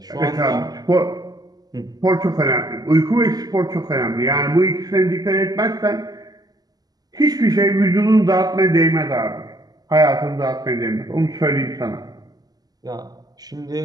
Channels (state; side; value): late; left; 0.19 ms